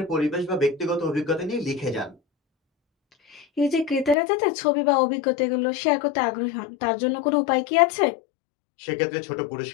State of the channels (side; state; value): right; drops out; at 4.2 s